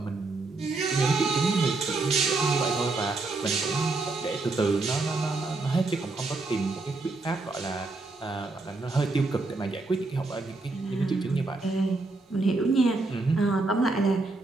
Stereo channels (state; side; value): quieter; left; 3.4 dB